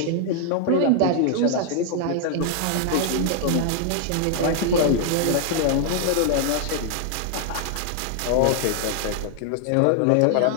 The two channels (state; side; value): different; both; correlation 0.00